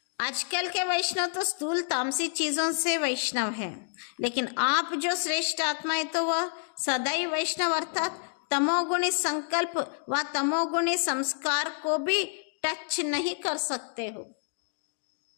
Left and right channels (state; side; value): silent; right; digital silence